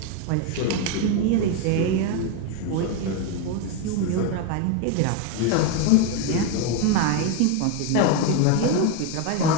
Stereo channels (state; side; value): different; both; correlation 0.02